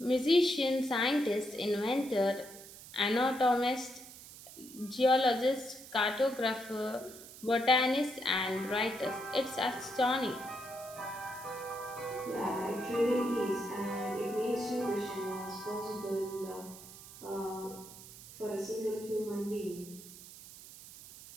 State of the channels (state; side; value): noise; right; hiss, 16 dB below the sound